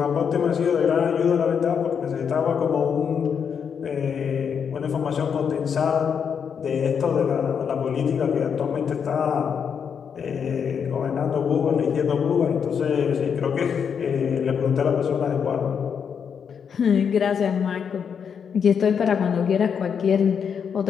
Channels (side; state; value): right; quieter; 7.1 dB